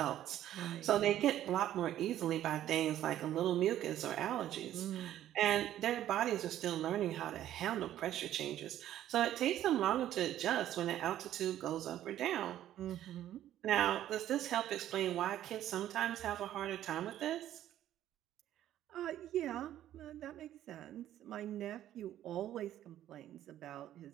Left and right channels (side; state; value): left; quieter; 12.3 dB